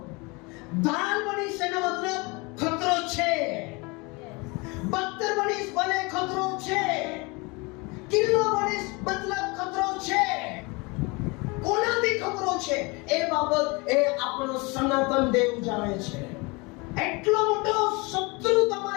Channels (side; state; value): right; quieter; 27.1 dB